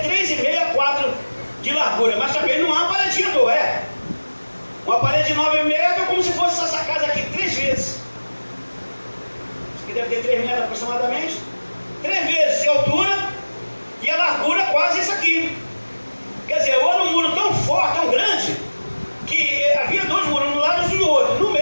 3,5 a 4 de largura. Mas também não é uma paredinha à toa, é. Uma parede de 9 metros é como se fosse essa casa aqui 3 vezes. Isso aqui deve ter 3 metros aproximadamente. 3 vezes de altura e a largura quase isso aqui. Quer dizer, era um muro tão forte, tão grande, que havia 2 muros, um lado e do outro. No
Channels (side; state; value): both; inverted; correlation -1.00